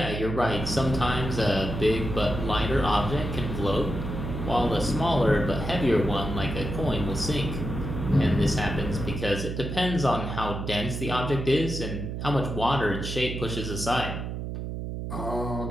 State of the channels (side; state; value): right; noise; hum, 5 dB below the sound